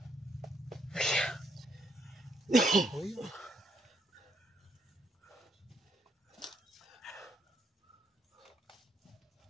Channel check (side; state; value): both; normal; correlation 0.74